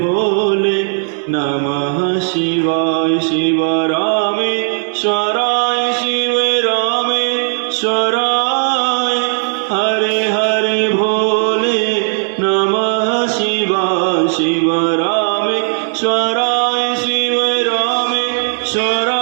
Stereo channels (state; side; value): silent; left; digital silence